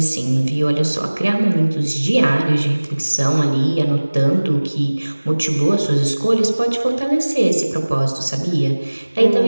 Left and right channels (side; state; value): both; inverted; correlation -1.00